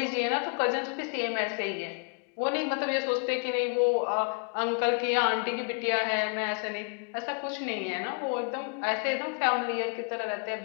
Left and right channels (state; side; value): quieter; right; 39.4 dB